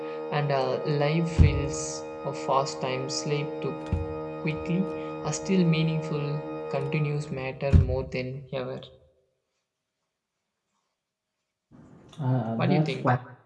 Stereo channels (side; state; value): both; identical; correlation 1.00